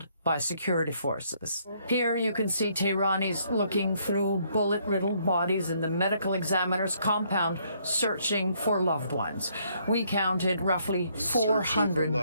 by security forces. Here you can see Tehranis looking through bullet-riddled bodies in the medical examiner's compound searching for loved ones. We counted roughly 400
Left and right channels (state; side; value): inverted; both; correlation -0.69